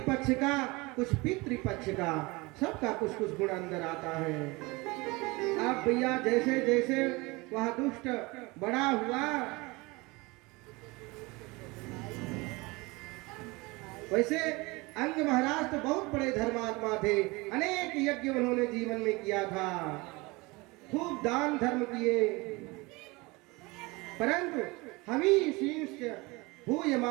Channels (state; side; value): quieter; left; 24.3 dB